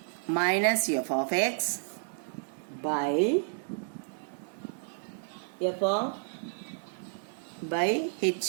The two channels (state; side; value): silent; left; digital silence